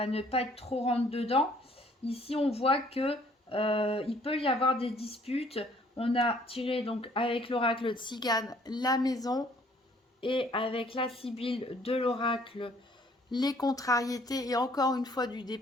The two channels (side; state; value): both; normal; correlation 0.60